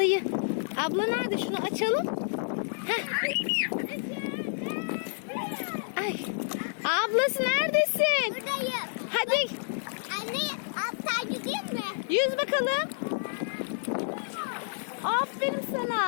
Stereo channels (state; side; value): silent; right; digital silence